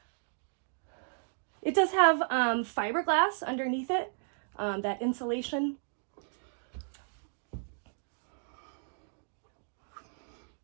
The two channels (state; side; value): silent; left; digital silence